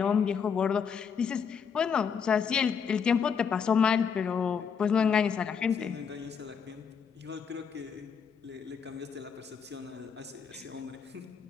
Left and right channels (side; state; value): right; quieter; 6.7 dB